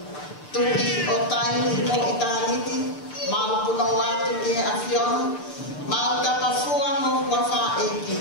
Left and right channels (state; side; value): late; right; 6.8 ms